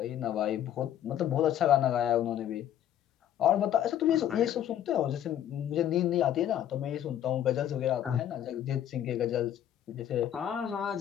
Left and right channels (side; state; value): right; quieter; 10.9 dB